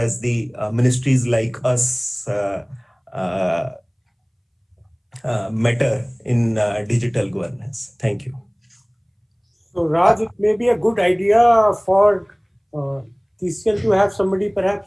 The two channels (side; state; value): both; identical; correlation 1.00